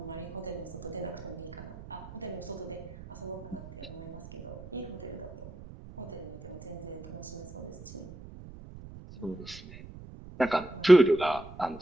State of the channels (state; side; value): noise; right; rumble, 14 dB below the sound